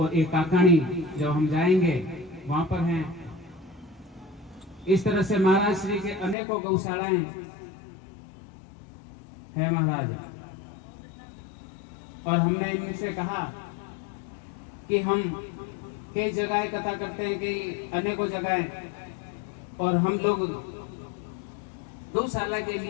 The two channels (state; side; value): drops out; right; at 6.4 s